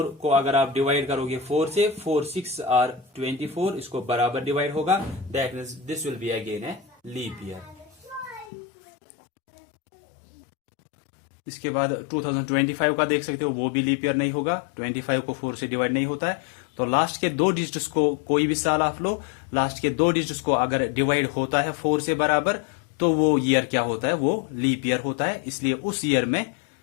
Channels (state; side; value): drops out; right; at 8.5 s